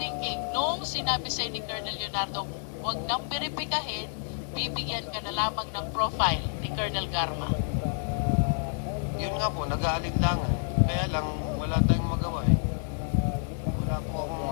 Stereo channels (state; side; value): silent; right; 59 dB below the other